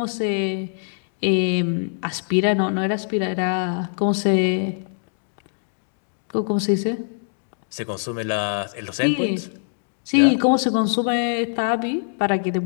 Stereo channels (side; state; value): right; silent; digital silence